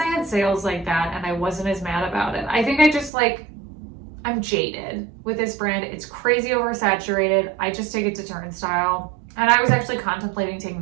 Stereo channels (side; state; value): left; drops out; at 3.1 s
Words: had sales like that and I wasn't as mad about it. I think I just I'm jaded with this brand. It's crazy oversaturated. I just take it to turnstile. And I was actually contemplating taking